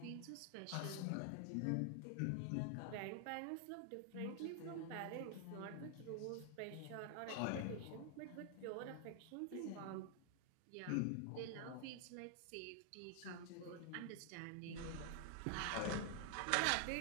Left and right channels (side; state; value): both; different; correlation 0.00